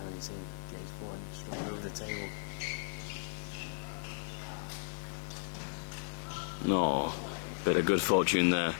his in. Gaze forward, just over the table. No, bit of good fortune there.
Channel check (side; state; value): right; silent; 54 dB below the other